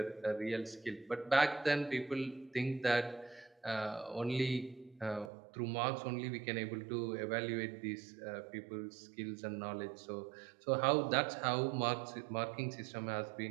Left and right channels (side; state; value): left; drops out; at 5.3 s